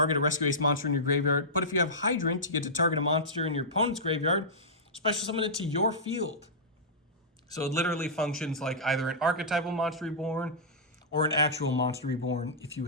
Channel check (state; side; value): normal; both; correlation -0.14